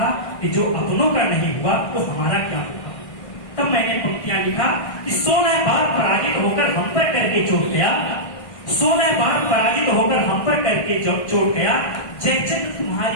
कि जो अपनों का नहीं हुआ तो हमारा क्या होगा। तब मैंने पंक्तियां लिखा कि 16 बार पराजित होकर हम पर करके चोट गया, 16 बार पराजित होकर हम पर करके चोट गया। जयचंद्र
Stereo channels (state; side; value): late; right; 1.6 ms